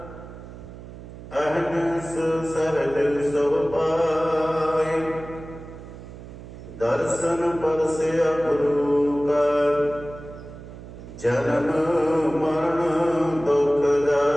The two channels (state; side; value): noise; right; hum, 14 dB below the sound